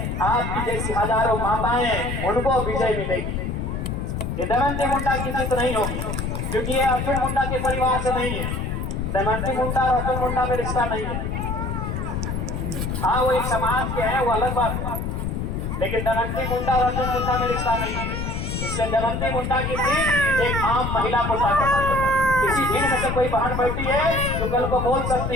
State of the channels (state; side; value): noise; left; rumble, 3 dB below the sound